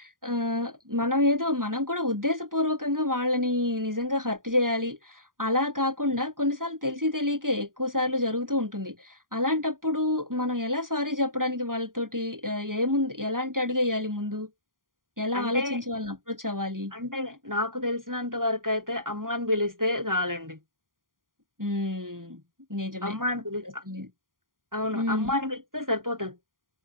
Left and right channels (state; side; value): late; left; 0.91 ms